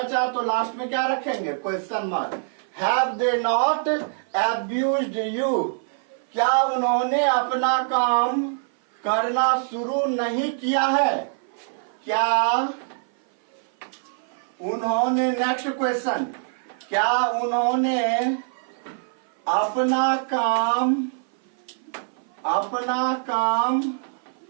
तो लास्ट में क्या रखेंगे, question mark. Have they not abused you, क्या उन्होंने अपना काम करना शुरू नहीं किया है? क्या उन्होंने, नेक्स्ट क्वेश्चन, क्या उन्होंने अपना काम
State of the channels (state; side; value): silent; left; 57 dB below the other